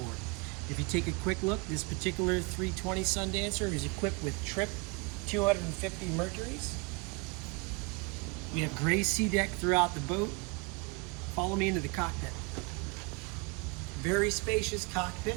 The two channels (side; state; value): left; quieter; 29.9 dB